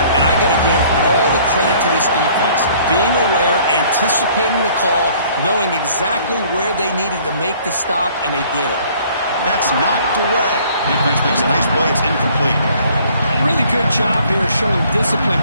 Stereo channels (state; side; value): inverted; both; correlation -0.57